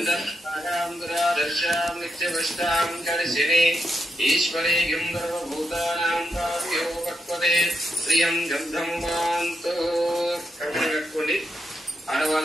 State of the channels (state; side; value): normal; both; correlation 0.83